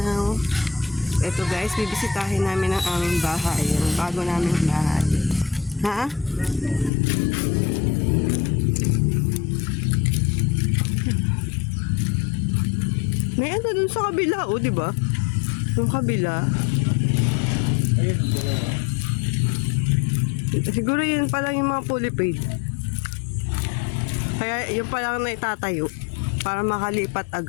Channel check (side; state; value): right; drops out; at 6.9 s